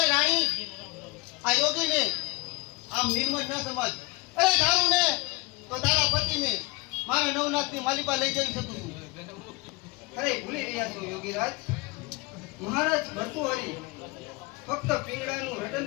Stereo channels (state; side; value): quieter; right; 25.2 dB